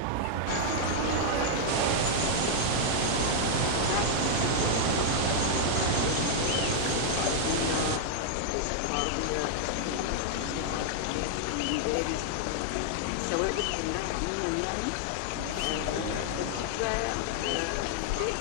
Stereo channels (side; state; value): both; different; correlation -0.01